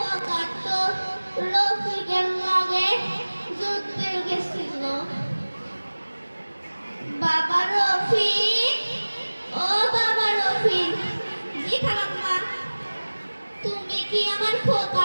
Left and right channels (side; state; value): both; inverted; correlation -1.00